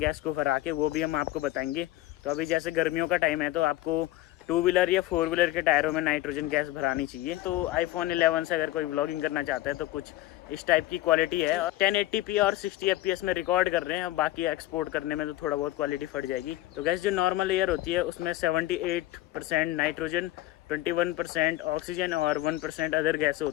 को भरा के, वो भी हम आपको बताएंगे। तो अभी जैसे गर्मियों का टाइम है तो आपको 2 व्हीलर या 4 व्हीलर के टायरों में नाइट्रोजन गैस भरानी चाहिए। तो iPhone 11 से अगर कोई व्लॉगिंग करना चाहता है तो कुछ इस टाइप की क्वालिटी है। 1080p और 60 fps में रिकॉर्ड कर रहे हैं, बाकी एक्सपोर्ट करने में तो थोड़ा बहुत क्वालिटी फट जाएगी। तो गैस जो नॉर्मल एयर होती है उसमें 78% नाइट्रोजन, 21% ऑक्सीजन और 1% अदर गैस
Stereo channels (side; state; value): right; quieter; 16.1 dB